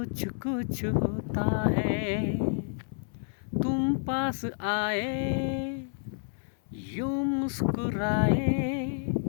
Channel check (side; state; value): right; silent; 58 dB below the other